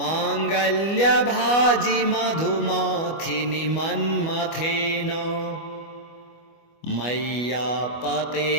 मधुमाथिनि मन्मथेन मय्यापते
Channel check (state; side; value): late; right; 25 ms